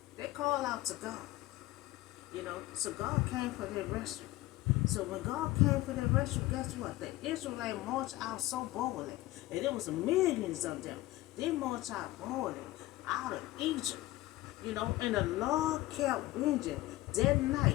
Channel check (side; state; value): right; quieter; 17.7 dB